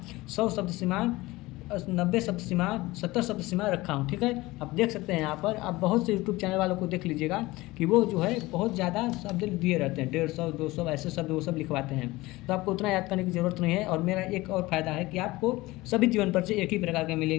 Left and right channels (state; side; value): quieter; right; 20.0 dB